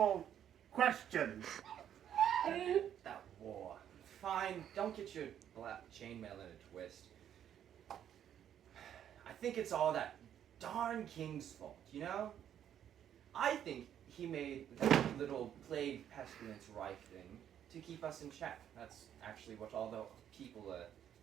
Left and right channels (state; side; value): quieter; left; 9.9 dB